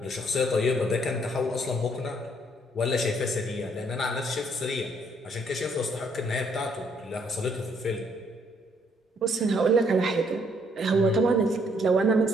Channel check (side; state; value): both; normal; correlation 0.68